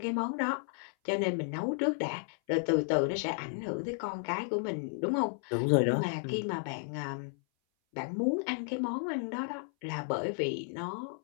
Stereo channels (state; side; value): silent; right; 56 dB below the other